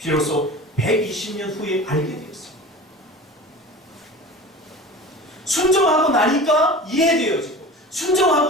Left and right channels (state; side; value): normal; both; correlation 0.36